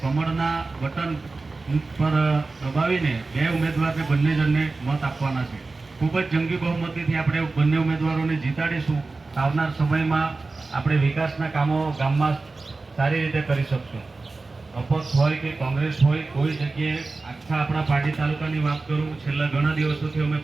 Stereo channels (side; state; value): left; quieter; 3.6 dB